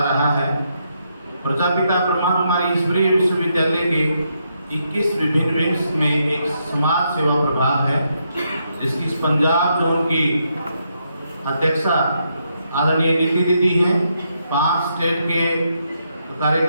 रहा है। प्रजापिता ब्रह्मा कुमारी ईश्वरीय विश्वविद्यालय के 21 विभिन्न विंग्स में एक समाज सेवा प्रभाग है, जिसकी पंजाब जोन की अध्यक्षा आदरणीय नीति दीदी हैं। 5 स्टेट के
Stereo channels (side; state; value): both; inverted; correlation -0.79